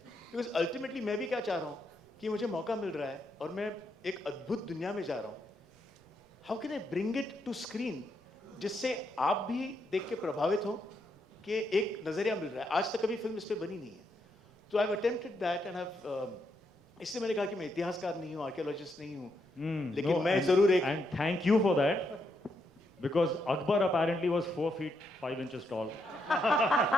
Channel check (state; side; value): normal; both; correlation 0.79